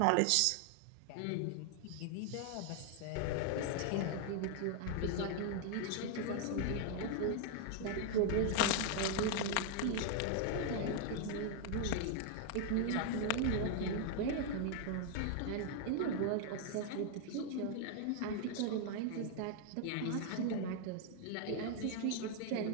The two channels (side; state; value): both; different; correlation 0.00